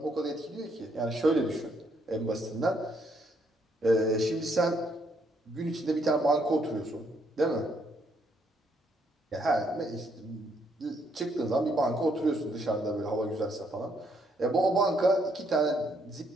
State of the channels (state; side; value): normal; both; correlation 0.72